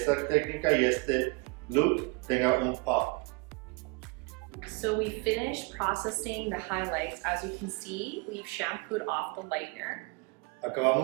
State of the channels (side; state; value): left; quieter; 29.0 dB